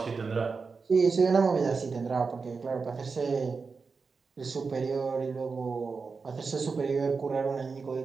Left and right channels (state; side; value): quieter; left; 4.8 dB